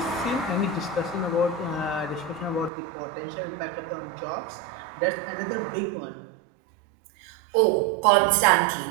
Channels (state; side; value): drops out; left; at 2.7 s